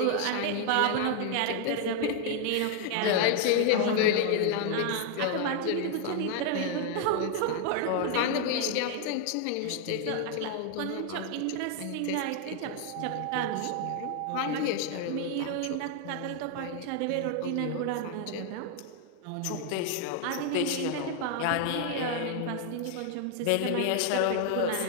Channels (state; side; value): different; both; correlation 0.00